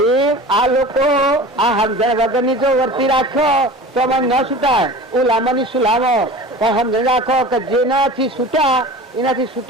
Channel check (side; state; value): both; normal; correlation 0.37